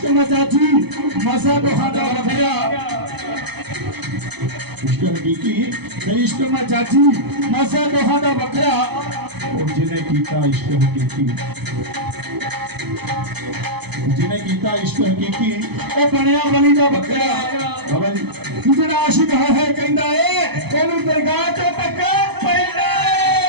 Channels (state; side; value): late; left; 0.98 ms